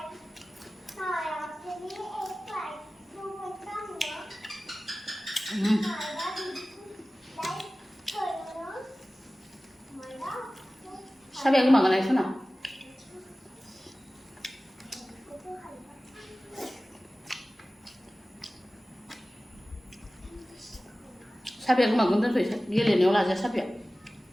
Sabi aku makan aja sana. Sabi aku makan tu dia ni olah aja sabi.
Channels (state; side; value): normal; both; correlation 0.97